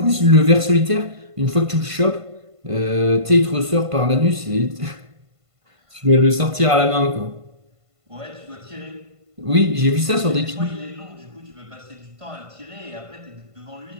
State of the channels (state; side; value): late; left; 1.5 ms